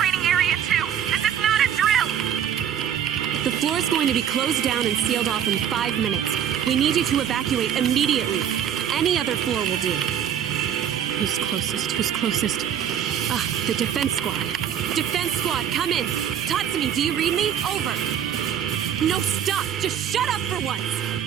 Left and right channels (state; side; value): quieter; left; 9.2 dB